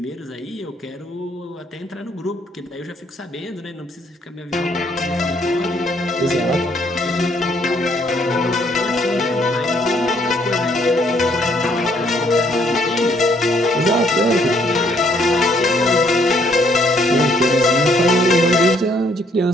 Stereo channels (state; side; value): normal; both; correlation 0.67